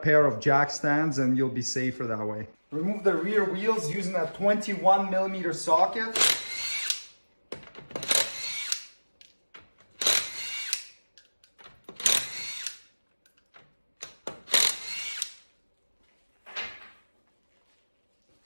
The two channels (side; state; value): both; inverted; correlation -1.00